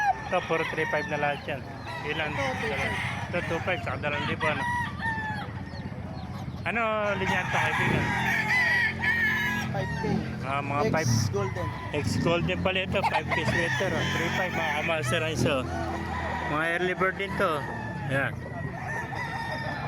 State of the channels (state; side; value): identical; both; correlation 1.00